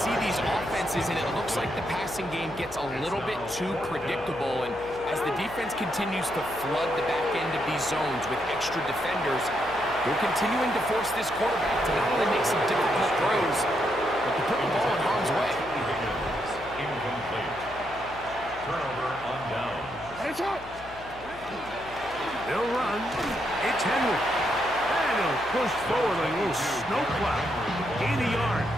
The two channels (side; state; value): left; noise; hum, 18 dB below the sound